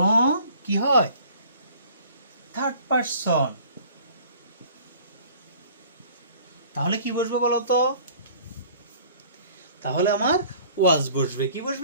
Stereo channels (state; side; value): inverted; both; correlation -0.50